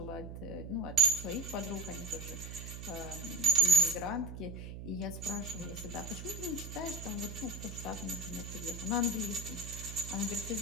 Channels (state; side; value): noise; right; hum, 9 dB below the sound